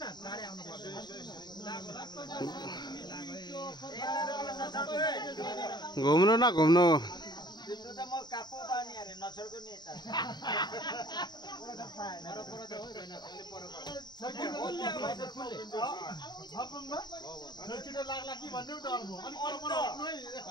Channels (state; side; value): late; right; 0.21 ms